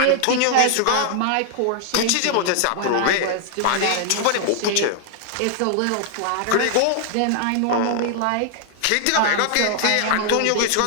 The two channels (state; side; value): different; both; correlation 0.00